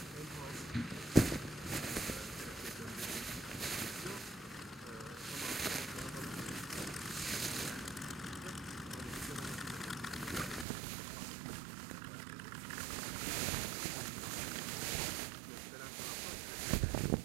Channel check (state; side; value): drops out; left; at 10.7 s